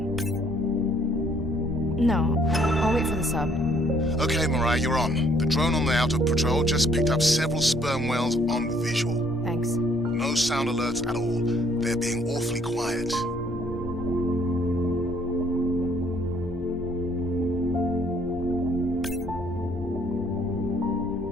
No, I'll wait for the sub. Okay, Mariah, you're on. The drone on the outer patrol just picked up several sperm whales on visual. Thanks. No sound alerts at all. They're being awfully quiet.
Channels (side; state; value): both; normal; correlation 0.64